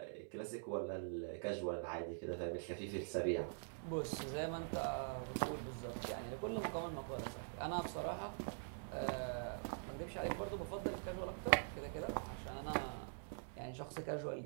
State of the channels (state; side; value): silent; left; digital silence